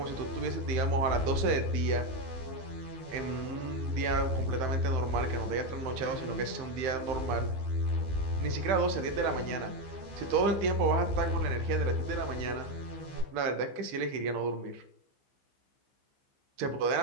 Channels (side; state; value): left; late; 15 ms